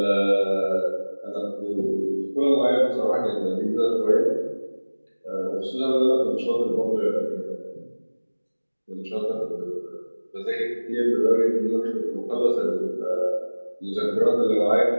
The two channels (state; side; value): inverted; both; correlation -1.00